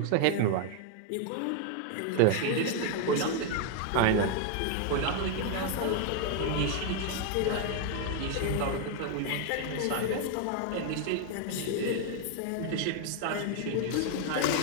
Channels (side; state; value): both; different; correlation 0.00